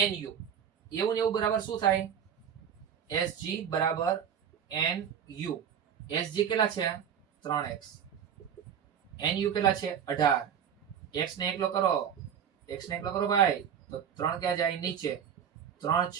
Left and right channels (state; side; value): quieter; left; 8.5 dB